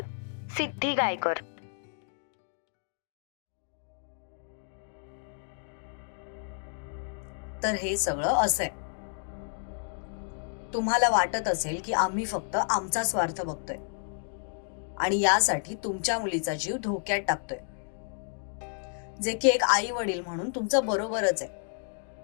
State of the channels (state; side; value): silent; right; digital silence